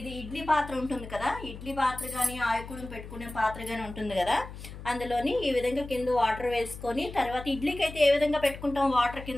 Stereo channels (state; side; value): noise; left; hum, 13 dB below the sound